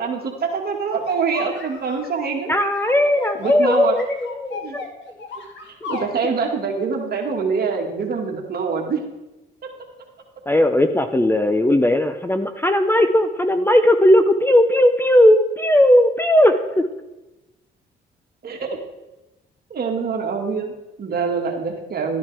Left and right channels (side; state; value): both; normal; correlation 0.74